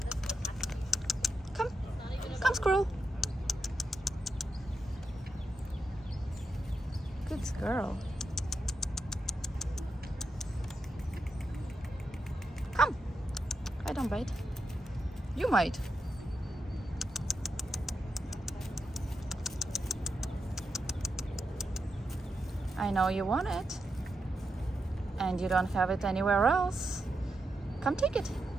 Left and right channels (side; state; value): both; normal; correlation 0.86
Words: Come squirrel. Good girl. Come. I don't bite. You might. I know you want it. And you don't have it anywhere else. Come take it.